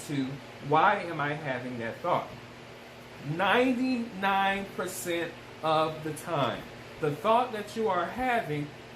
why am I having that thought? 99% of the time, the thought that you are having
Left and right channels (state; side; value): identical; both; correlation 1.00